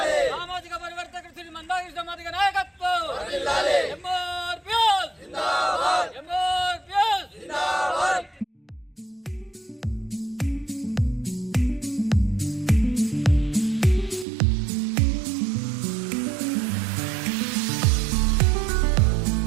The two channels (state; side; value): drops out; left; at 14.2 s